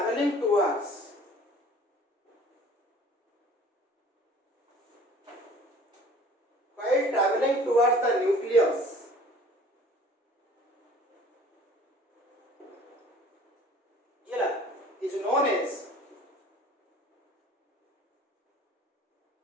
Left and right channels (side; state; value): both; normal; correlation 0.49